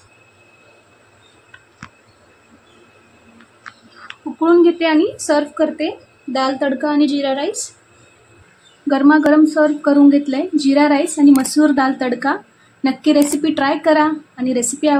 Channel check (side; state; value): both; identical; correlation 1.00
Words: उकळून घेते आणि सर्व करते. दाल तडका आणि जीरा राईस गरमागरम सर्व करून घेतलंय. जीरा राईस आणि मसूर दाल तडका. नक्की रेसिपी ट्राय करा. आणि रेसिपी